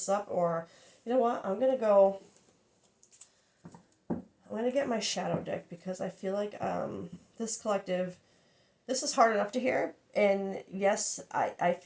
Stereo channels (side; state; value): both; identical; correlation 1.00